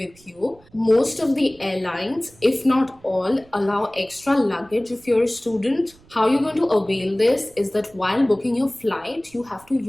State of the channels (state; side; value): noise; right; rumble, 28 dB below the sound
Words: you. Most of the airlines, if not all, allow extra luggage if you're a student. How you're going to avail this is that while booking your flight, you have to